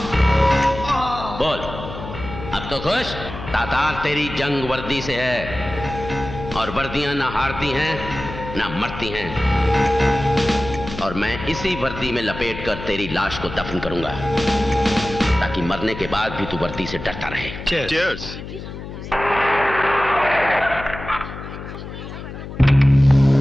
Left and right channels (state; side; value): noise; left; hum, 10 dB below the sound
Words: बोल, अब तो खुश? तातार तेरी जंग वर्दी से है, और वर्दियां ना हारती हैं ना मरती हैं, और मैं इसी वर्दी में लपेटकर तेरी लाश को दफन करूंगा, ताकि मरने के बाद भी तू वर्दी से डरता रहे। Cheers.